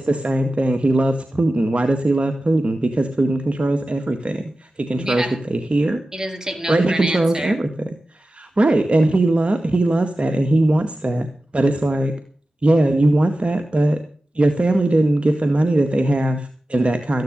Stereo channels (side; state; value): both; normal; correlation 0.94